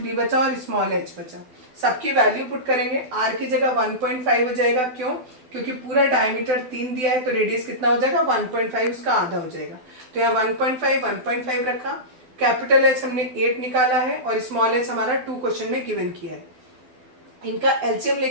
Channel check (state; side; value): late; left; 12 ms